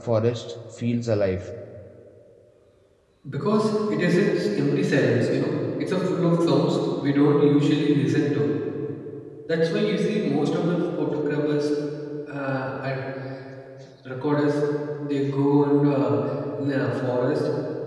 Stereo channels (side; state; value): both; identical; correlation 1.00